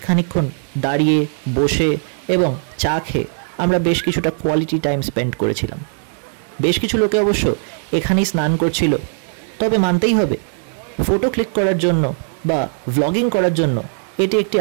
খানিকক্ষণ দাঁড়িয়ে বসে এবং চা খেয়ে আমরা বেশ কিছুটা কোয়ালিটি টাইম স্পেন্ড করেছিলাম। বেশ কিছু লোকে অবশ্য এখানেই স্নান করছিল, তবে মানতেই হবে ফটো ক্লিক করার জন্য বা ভ্লগিং করার জন্য এটি একটি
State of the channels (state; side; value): silent; left; 67 dB below the other